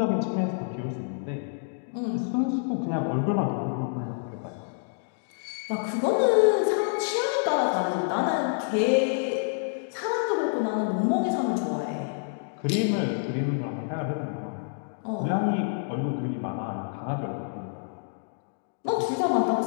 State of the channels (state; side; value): silent; right; digital silence